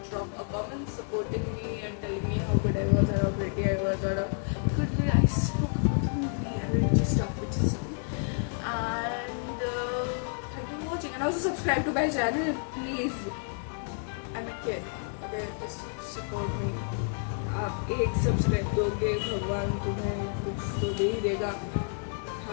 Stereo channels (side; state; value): right; silent; 57 dB below the other